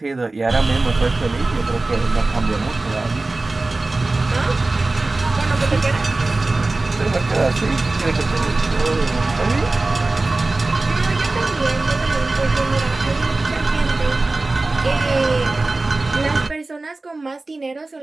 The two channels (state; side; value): quieter; left; 3.2 dB